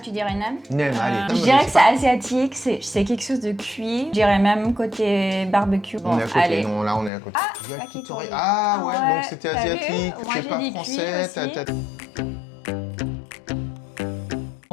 tu dirais nem? Nem, allez. Je dirais que c'est asiatique, c'est quelque chose de cuit. Je dirais même côté barbecue. Bon, On est à côté, allez. non, là on est à côté. Ah, Yakitori. yakitori. Ah ouais, Ouais, donc c'était t'as vu? asiatique, Moi, c'est j'ai pas dit français. cuit aussi.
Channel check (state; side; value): drops out; right; at 7.1 s